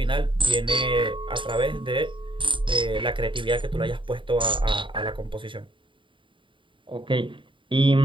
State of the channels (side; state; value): left; late; 0.24 ms